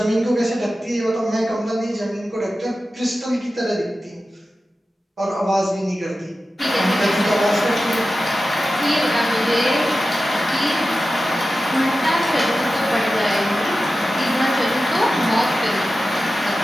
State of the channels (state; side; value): normal; both; correlation 0.93